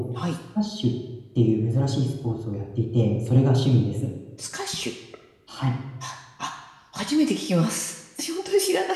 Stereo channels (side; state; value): both; identical; correlation 1.00